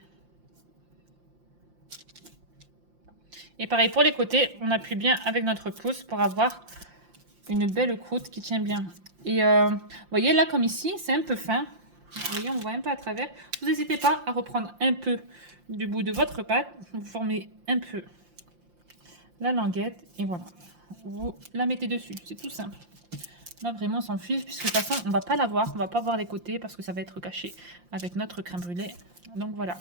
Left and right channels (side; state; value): left; late; 5.7 ms